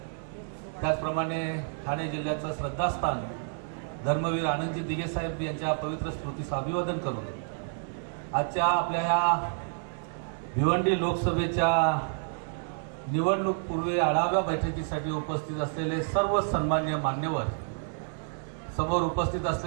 त्याचप्रमाणे ठाणे जिल्ह्याचं श्रद्धास्थान धर्मवीर आनंदजी दिघे साहेब यांच्या पवित्र स्मृतीस अभिवादन करून आजच्या आपल्या ह्या भिवंडी लोकसभेच्या निवडणूक पूर्वी आढावा बैठकीसाठी उपस्थित असलेले सर्व सन्मान्य मान्यवर, समोर उपस्थित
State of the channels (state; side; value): silent; left; digital silence